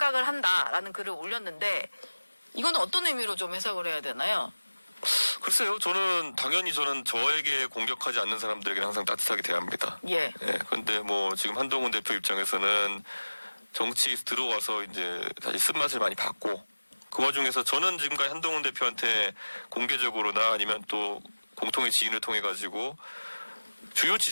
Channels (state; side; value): inverted; both; correlation -1.00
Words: 한다라는 글을 올렸는데 이거는 어떤 의미로 좀 해석을 해야 되나요? 글쎄요, 당연히 저는 저에게 공격하지 않는 사람들에게 항상 따뜻하게 대합니다. 예. 예, 근데 뭐 지금 한동훈 대표 입장에서는 정치에 들어와서 이제 다시 쓴맛을 많이 봤고 그 와중에서 저는 지금까지 한동훈 대표한테 공개적으로나 아니면 또 공통의 지인을 통해 가지고 주요